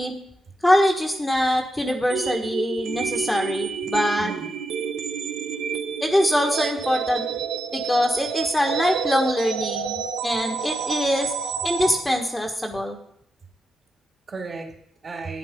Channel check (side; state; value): both; normal; correlation 0.85